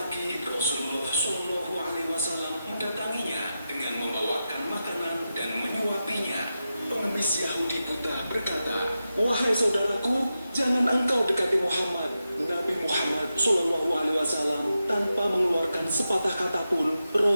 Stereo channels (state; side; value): inverted; both; correlation -0.90